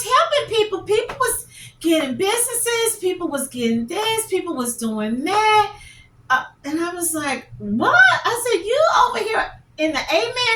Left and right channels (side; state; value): both; identical; correlation 1.00